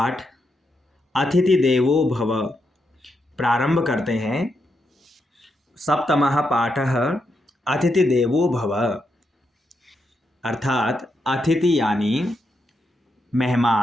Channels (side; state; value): both; normal; correlation 0.83